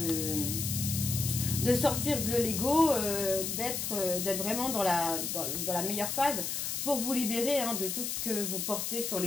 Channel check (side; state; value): left; noise; hiss, 2 dB below the sound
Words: sortir de l'ego, d'être vraiment dans la meilleure phase pour vous libérer hein, de tout ce que vous portez sur